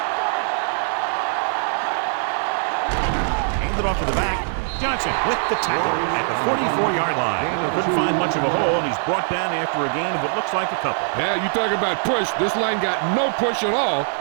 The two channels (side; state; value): left; silent; 64 dB below the other